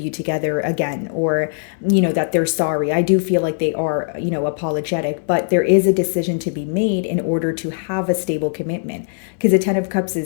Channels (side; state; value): right; silent; 66 dB below the other